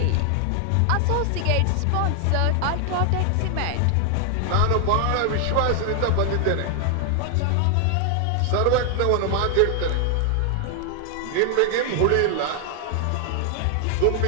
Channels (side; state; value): both; different; correlation 0.00